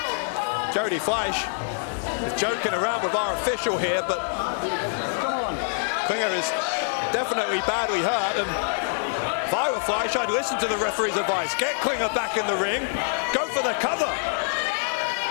Jody Fleisch is joking around with our official here, but Klinger is definitely badly hurt, and if I were Fleisch, I'd listen to the referee's advice. Get Klinger back in the ring, go for the cover.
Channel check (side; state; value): right; silent; 62 dB below the other